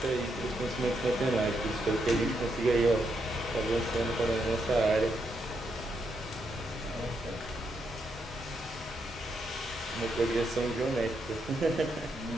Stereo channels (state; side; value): normal; both; correlation 0.80